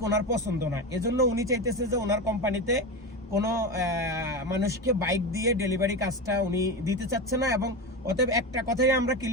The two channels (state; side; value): normal; both; correlation 0.20